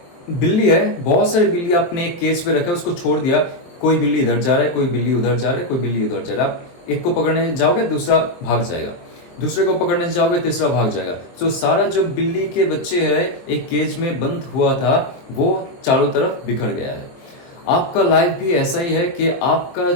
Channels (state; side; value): late; right; 23 ms